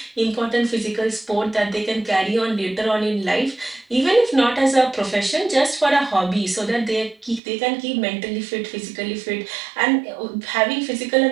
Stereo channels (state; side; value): drops out; left; at 7.4 s